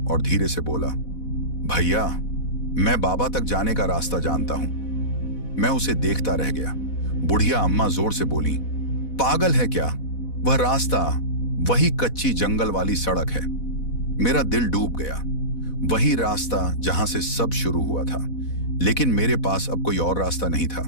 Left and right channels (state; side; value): late; right; 4.1 ms